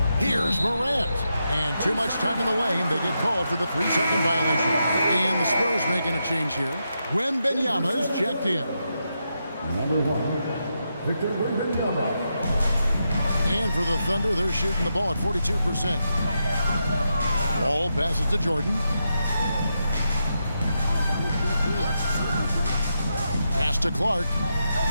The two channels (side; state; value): both; inverted; correlation -0.84